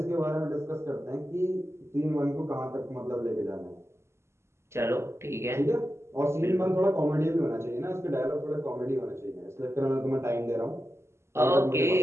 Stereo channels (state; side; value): late; left; 0.13 ms